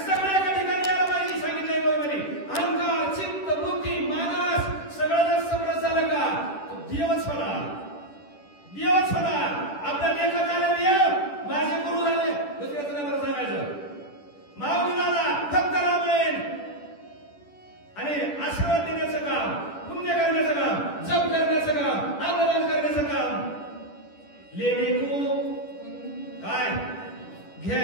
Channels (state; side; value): late; right; 10 ms